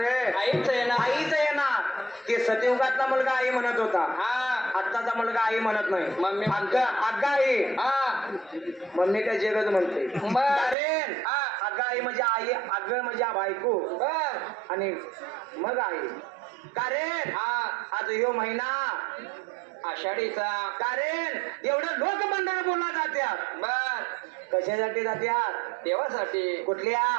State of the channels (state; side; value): drops out; left; at 10.8 s